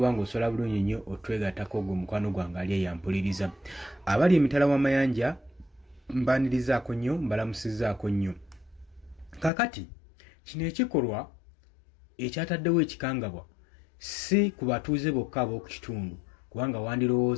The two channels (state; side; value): drops out; right; at 9.5 s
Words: ng'osobola bulungi nnyo otwegattako gwe mukwano gwange ali eyampuliriza. Abali emitala w'amayanja mbanirizaako nnyo mbalamusizzaako nnyo. Kakati kino ekikolwa ekyataddewo ekikangabwa si ku batuuze bokka ab'oku kitundu kubanga